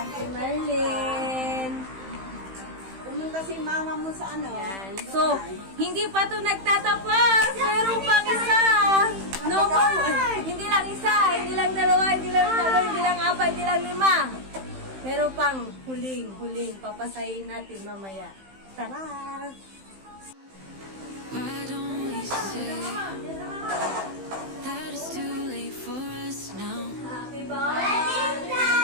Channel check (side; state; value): left; late; 15 ms